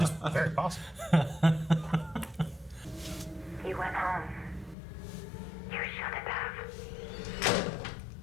very possible. He went home. You shouldn't have.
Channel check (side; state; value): right; drops out; at 4.8 s